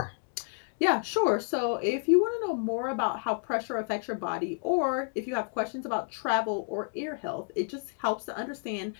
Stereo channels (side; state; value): right; silent; 58 dB below the other